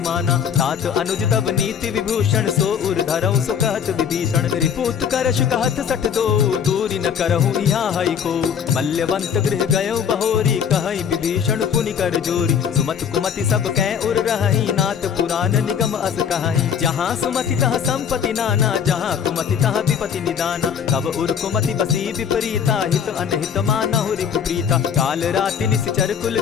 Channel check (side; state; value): right; quieter; 7.8 dB